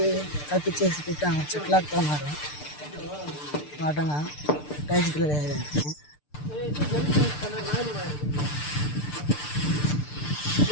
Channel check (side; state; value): right; late; 6.7 ms